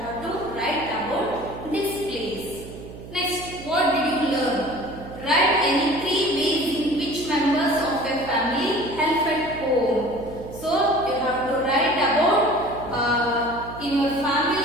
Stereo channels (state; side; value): noise; right; hum, 14 dB below the sound